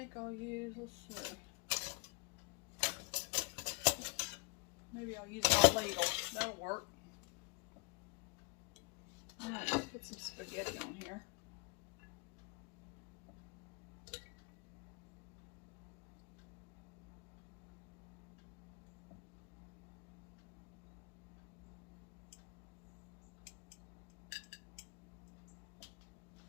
think I'll use, let's see. Maybe I'll use my ladle. That'll work. Alright, let's put some spaghetti on here.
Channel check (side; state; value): right; quieter; 29.1 dB